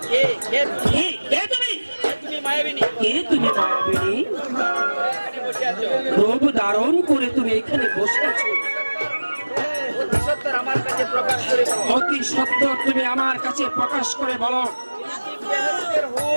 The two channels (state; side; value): inverted; both; correlation -1.00